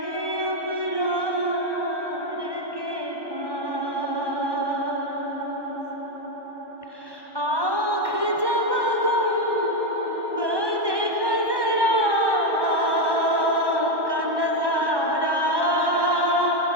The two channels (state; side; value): late; left; 1.1 ms